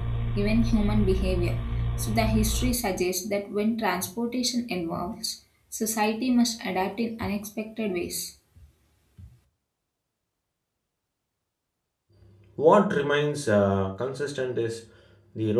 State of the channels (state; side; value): identical; both; correlation 1.00